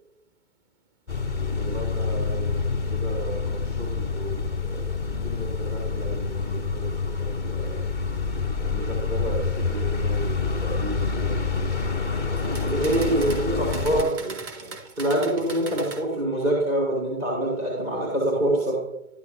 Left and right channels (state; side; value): late; left; 2.2 ms